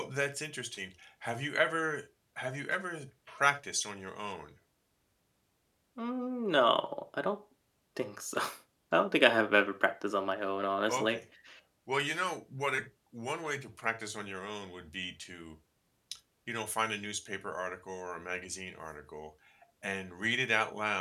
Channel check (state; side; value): identical; both; correlation 1.00